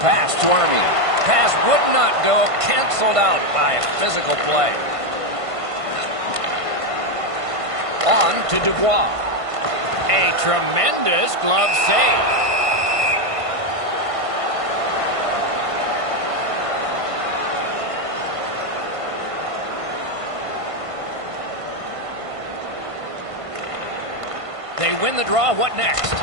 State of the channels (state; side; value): late; left; 1.5 ms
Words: to Armia. Pass would not go. Canceled out by a physical play. On to Dubois. A tremendous glove save. They win the draw. What next?